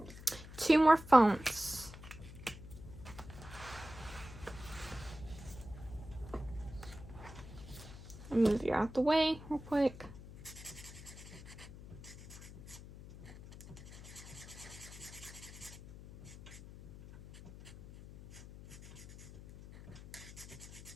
2 more phones. I'll move you out the way real quick.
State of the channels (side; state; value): left; noise; hum, 15 dB below the sound